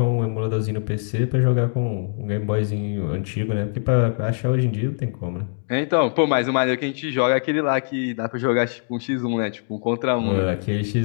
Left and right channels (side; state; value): right; silent; 64 dB below the other